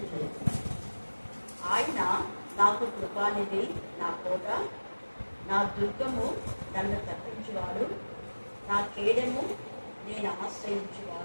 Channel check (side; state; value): both; inverted; correlation -1.00